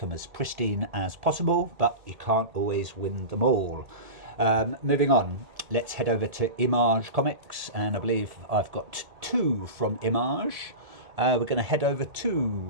them as pristine as possible, but you can't always win them all. Moving on, let's head over to Image Comics, and I believe I've got two from Image. We're going to head over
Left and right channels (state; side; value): late; left; 1.7 ms